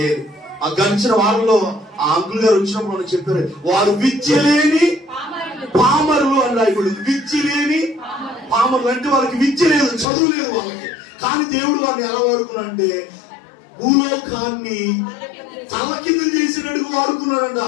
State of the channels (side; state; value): right; drops out; at 10.1 s